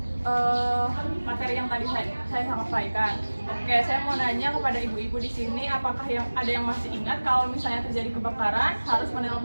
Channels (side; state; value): both; inverted; correlation -1.00